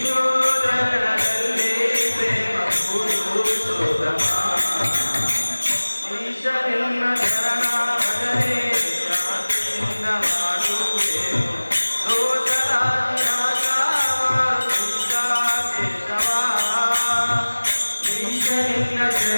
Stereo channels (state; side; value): inverted; both; correlation -1.00